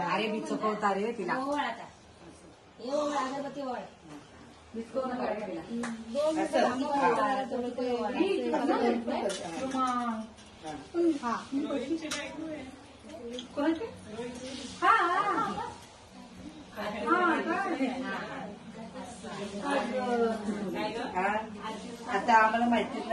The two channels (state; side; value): identical; both; correlation 1.00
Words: अरे मी चुकवता रे तिला अगरबत्ती वळ आता आम्हाला माहितीच